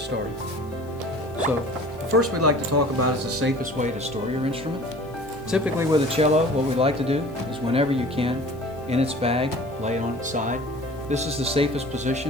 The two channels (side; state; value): left; noise; hiss, 27 dB below the sound